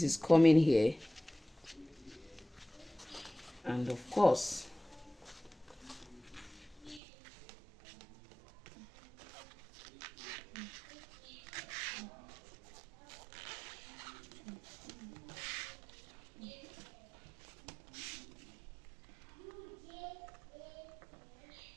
is coming here, and of course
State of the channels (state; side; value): drops out; left; at 7.0 s